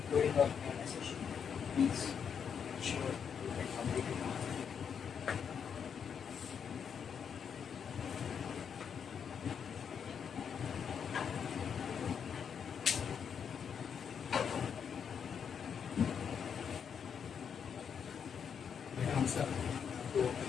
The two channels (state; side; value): quieter; right; 7.2 dB